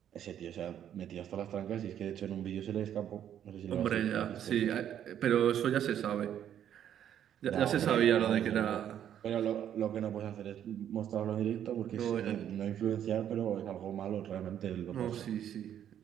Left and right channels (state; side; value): quieter; left; 10.0 dB